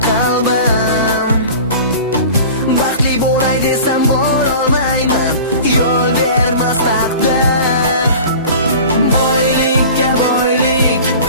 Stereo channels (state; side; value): inverted; both; correlation -0.40